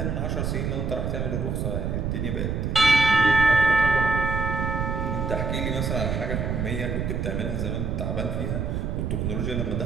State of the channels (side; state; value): right; noise; rumble, 1 dB below the sound